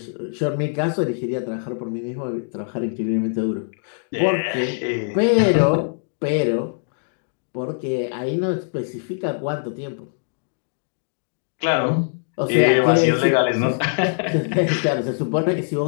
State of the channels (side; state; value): right; silent; digital silence